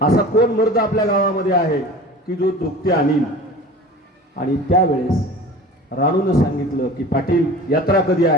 असा कोण मर्द आपल्या गावामध्ये आहे की जो जोगती आणील. आणि त्यावेळेस राणूनं सांगितलं की पाटील यात्रा कधी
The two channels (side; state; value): both; normal; correlation 0.39